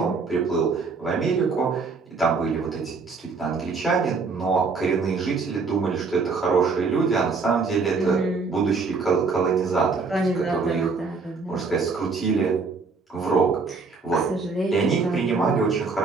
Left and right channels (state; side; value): quieter; left; 4.5 dB